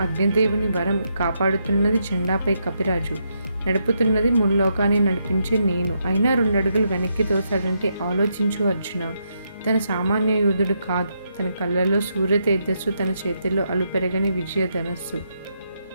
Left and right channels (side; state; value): both; inverted; correlation -0.80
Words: అగ్నిదేవుని వరం కాపాడుతున్నది జెండాపై కపిరాజు, నడుపుతున్నది ముల్లోకాన్ని నడిపించే నేను, అయినా 2 అడుగులు వెనక్కి తోసాడంటే ఆలోచించు అర్జున. తన సామాన్య యోధుడు కాదు, తన కళ్ళలో సూర్య తేజస్సు, తన చేతిలో అలుపెరగని విజయధనస్సు,